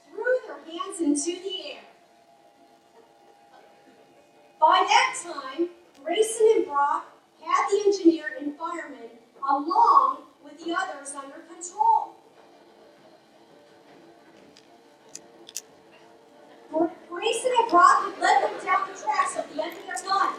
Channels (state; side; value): identical; both; correlation 1.00